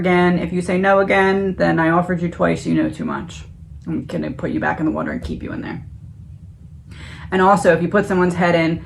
If you say no again, then I offered you twice, you know too much. I'm going to put you back in the water and keep you in there. And also, if you put someone's head in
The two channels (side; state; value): both; identical; correlation 1.00